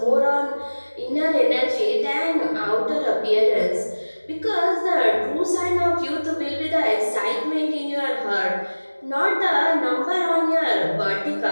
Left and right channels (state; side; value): inverted; both; correlation -1.00